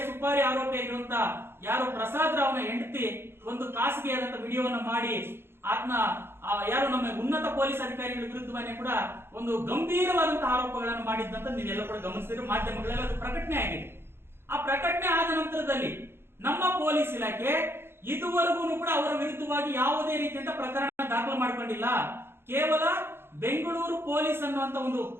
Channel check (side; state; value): left; late; 0.11 ms